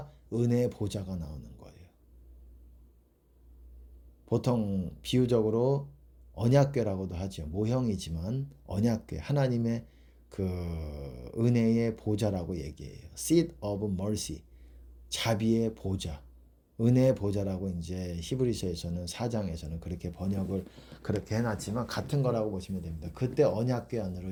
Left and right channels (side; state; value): both; identical; correlation 1.00